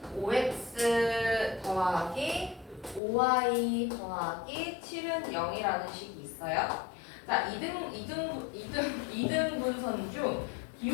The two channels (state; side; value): drops out; right; at 3.0 s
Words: 5x 더하기 5y 더하기 7은 0이라는 식이 있어요. 자, 이등분선 중